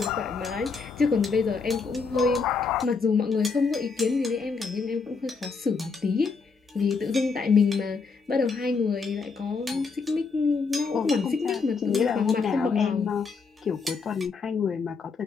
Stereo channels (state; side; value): quieter; right; 4.8 dB